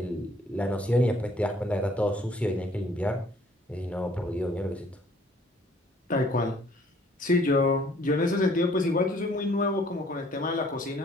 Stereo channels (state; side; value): normal; both; correlation 0.59